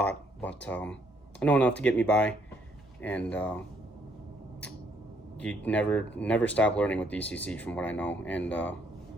but I know enough to get me by, and you never stop learning with DCC from what I know. And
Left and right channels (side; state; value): both; normal; correlation 0.69